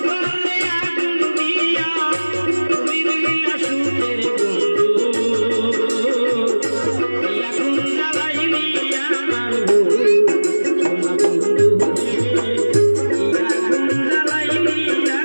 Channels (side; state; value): both; inverted; correlation -1.00